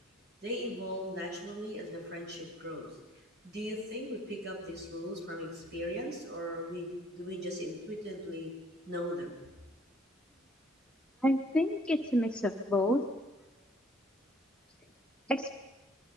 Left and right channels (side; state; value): both; normal; correlation 0.59